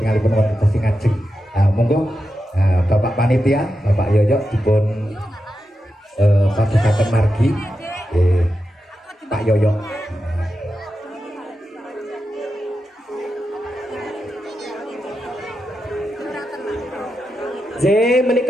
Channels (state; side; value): normal; both; correlation 0.89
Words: wonten sing ngajeng. Monggo Bapak panitia Bapak Yoyo dipun padukaken margi. Pak Yoyo.